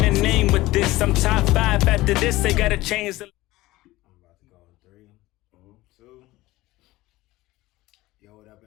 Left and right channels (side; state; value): right; quieter; 18.3 dB